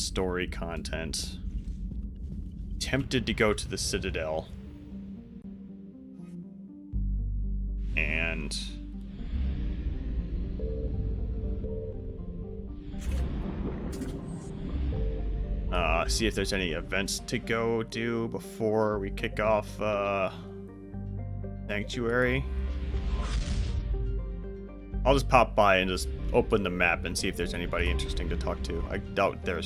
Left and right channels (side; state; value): both; identical; correlation 1.00